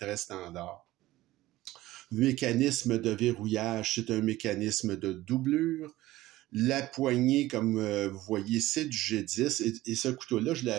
standard. Le mécanisme de verrouillage, c'est un mécanisme de doublure. La poignée, comme vous voyez, c'est du G10. Et ce couteau-là, je l'ai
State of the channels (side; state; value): left; quieter; 16.8 dB